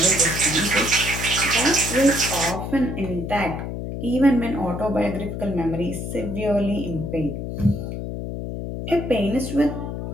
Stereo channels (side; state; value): left; noise; hum, 5 dB below the sound